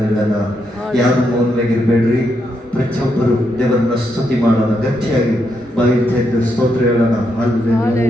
ಯಾರು ಮೌನವಾಗಿರಬೇಡ್ರಿ. ಪ್ರತಿಯೊಬ್ಬರು ದೇವರನ್ನ ಸ್ತುತಿ ಮಾಡೋಣ. ಗಟ್ಟಿಯಾಗಿ ಬಾಯಿ ತೆಗೆದು ಸ್ತೋತ್ರ ಹೇಳೋಣ.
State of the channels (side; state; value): both; normal; correlation 0.80